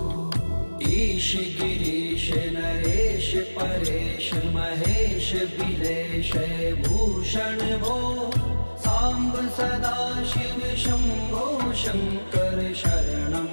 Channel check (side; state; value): both; inverted; correlation -1.00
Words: ईश गिरीश नरेश परेश महेश बिलेश भूषण भो साम्ब सदा शिव शम्भो शङ्कर शरणं